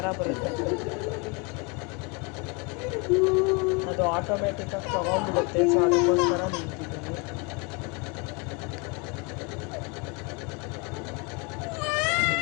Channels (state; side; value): quieter; right; 30.2 dB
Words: ಬರುತ್ತೆ. ಅದು ಆಟೋಮೆಟಿಕ್ಕಾಗಿ ತೊಗೊಂಡ್ಬಿಡುತ್ತೆ. ಸೊ ಅದಕ್ಕೋಸ್ಕರ ನಿಂತಿದ್ದೀನಿ.